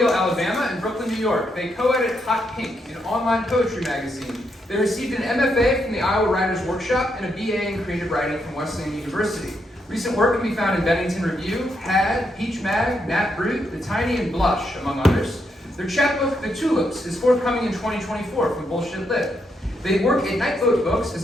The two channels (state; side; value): normal; both; correlation 0.79